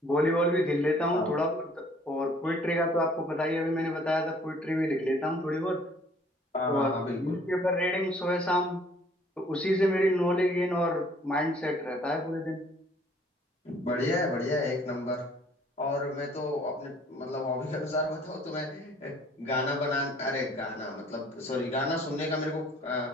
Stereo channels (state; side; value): normal; both; correlation 0.57